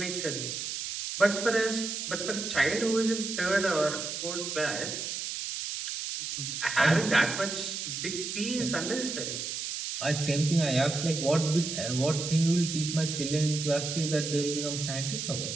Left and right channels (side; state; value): right; noise; hiss, 4 dB below the sound